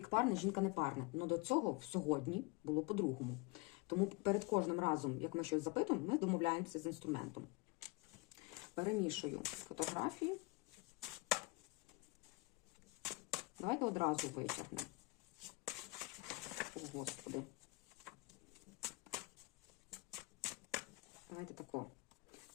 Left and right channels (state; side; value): quieter; right; 24.7 dB